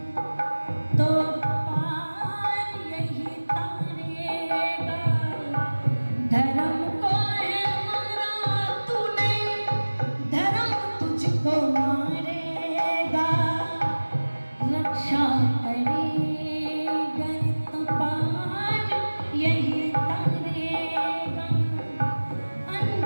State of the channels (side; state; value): both; inverted; correlation -1.00